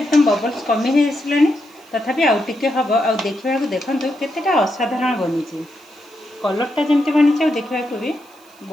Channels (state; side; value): noise; right; hiss, 29 dB below the sound